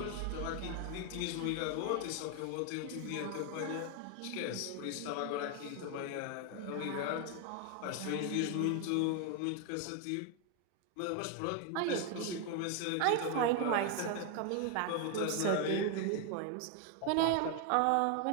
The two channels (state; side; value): different; both; correlation 0.01